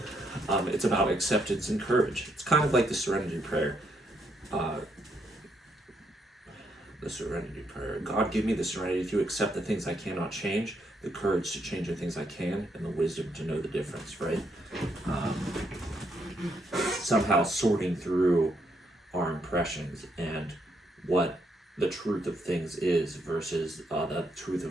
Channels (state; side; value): normal; both; correlation 0.76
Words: it's about acceptance and courage. It's kind of like the serenity prayer. The serenity prayer. God, give me the serenity to accept the things I cannot change, the courage to change the things I can, and the wisdom to know the difference, right? Somehow sorting through our impressions and what the truth of things is versus the truth